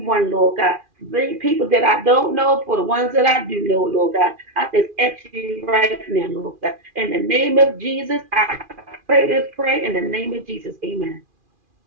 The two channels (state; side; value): late; left; 2.4 ms